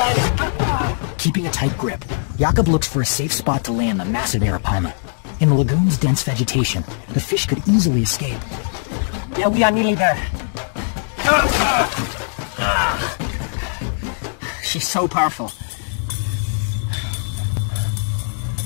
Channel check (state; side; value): silent; right; digital silence